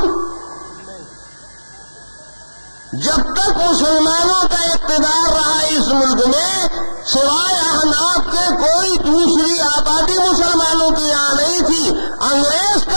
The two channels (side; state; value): both; inverted; correlation -1.00